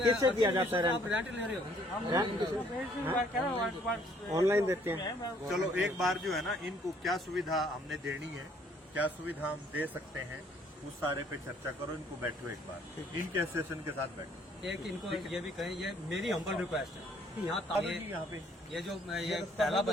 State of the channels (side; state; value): both; normal; correlation 0.62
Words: दिया जाता है आप रेंट ले रहे हो? ऑनलाइन देते हैं। चलो एक बार जो है ना, इनको क्या सुविधा हमने देनी है, क्या सुविधा हम दे सकते हैं, उस सारे पे चर्चा करो। इनको बैठो एक बार, इनके एसोसिएशन के साथ बैठो। एक इनको ये भी कहें, ये मेरी हम्बल रिक्वेस्ट है कि यहाँ ताकि यहाँ पे ये जो ये पहला